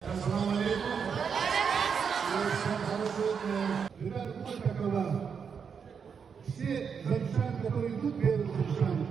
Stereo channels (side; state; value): left; quieter; 6.5 dB